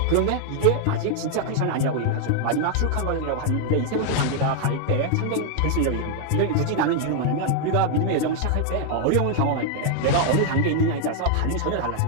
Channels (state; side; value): different; both; correlation 0.00